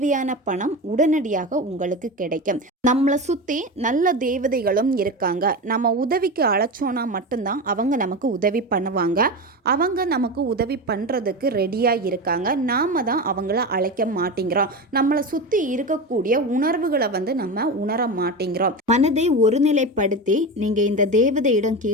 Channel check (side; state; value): both; normal; correlation 0.23